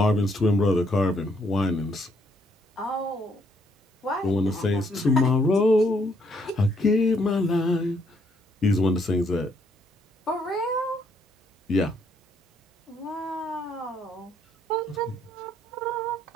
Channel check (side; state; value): both; normal; correlation 0.70